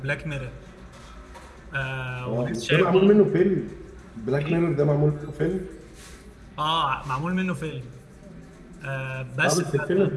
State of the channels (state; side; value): identical; both; correlation 1.00